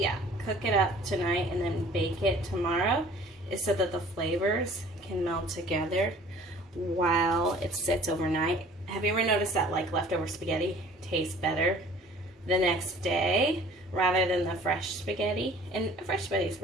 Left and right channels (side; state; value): both; normal; correlation 0.50